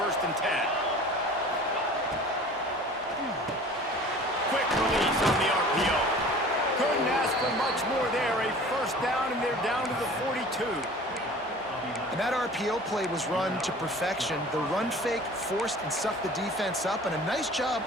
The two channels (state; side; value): normal; both; correlation 0.44